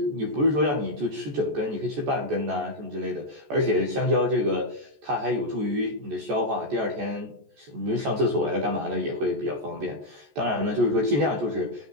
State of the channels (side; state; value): left; late; 14 ms